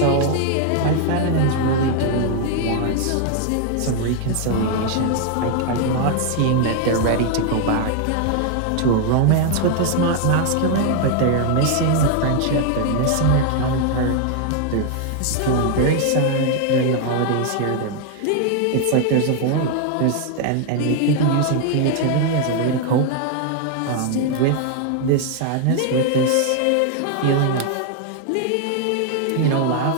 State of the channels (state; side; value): different; both; correlation 0.00